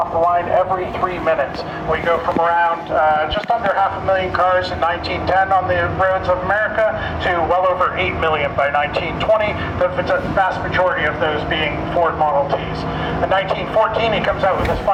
the line every 3 minutes. We go from around just under 500,000 cars in 1910 on the roads of America to well over 8 million by 1920, the vast majority of those being Ford Model Ts. In 1914, he comes out with his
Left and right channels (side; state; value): both; identical; correlation 1.00